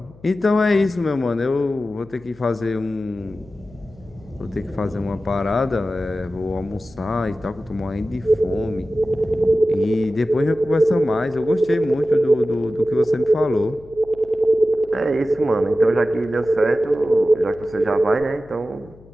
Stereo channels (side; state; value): left; noise; hum, 24 dB below the sound